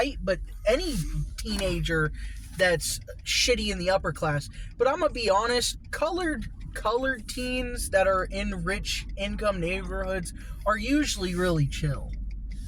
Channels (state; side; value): identical; both; correlation 1.00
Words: but any teenager that's shitty in the upper class. But I'm gonna be honest, colored teens that are in rich income neighborhoods are usually really chill.